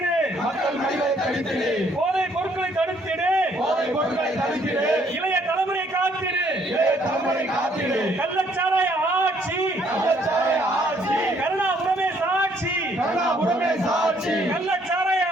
மக்கள் மடிவை தடுத்திடு, போதை பொருட்களை தடுத்திடு, போதை பொருட்களை தடுத்திடு, இளைய தலைமுறை காத்திடு, இளைய தலைமுறை காத்திடு, கள்ளச்சாராய ஆட்சி, கள்ளச்சாராய ஆட்சி, கருணாபுரமே சாட்சி, கருணாபுரமே சாட்சி, கள்ளச்சாராய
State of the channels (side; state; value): both; normal; correlation 0.66